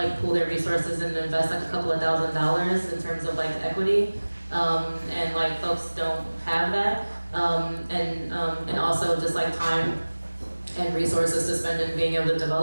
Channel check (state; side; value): inverted; both; correlation -1.00